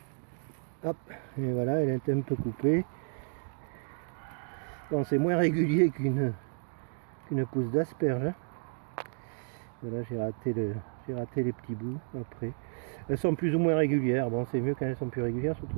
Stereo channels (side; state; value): left; silent; 57 dB below the other